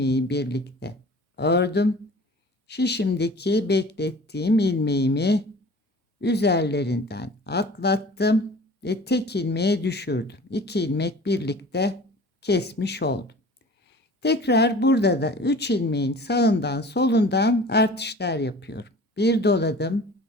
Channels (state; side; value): normal; both; correlation 0.44